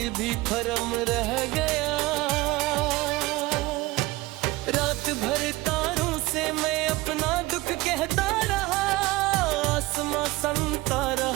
भी भरम रह गया। रात भर तारों से मैं अपना दुख कहता रहा, आसमां संता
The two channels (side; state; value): left; quieter; 20.3 dB